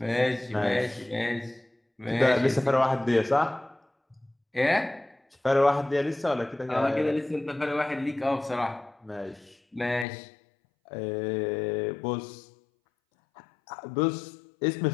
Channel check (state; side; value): drops out; right; at 10.1 s